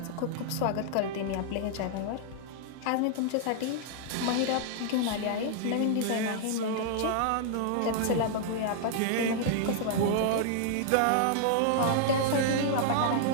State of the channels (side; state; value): both; different; correlation -0.01